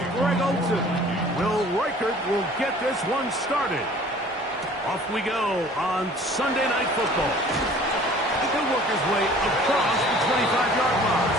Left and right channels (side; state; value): both; normal; correlation 0.50